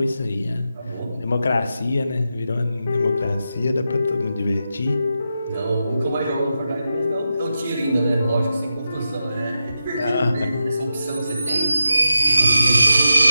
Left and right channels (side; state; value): both; inverted; correlation -0.88